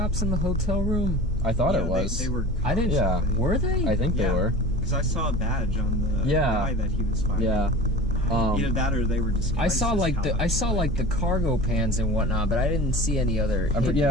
in the hotel room? I thought it was. They were cops. I didn't. Yeah. Were they? I think they were. Because I saw a badge on the guy that he was fighting. Yeah. Either that or they were disguised. I saw like the cargo pans and whatnot, but I didn't see any other. They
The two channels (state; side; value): normal; both; correlation 0.37